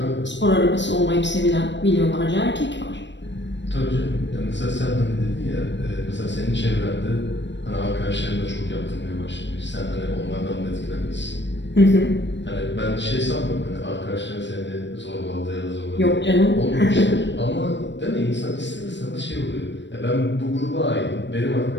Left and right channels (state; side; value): late; right; 0.53 ms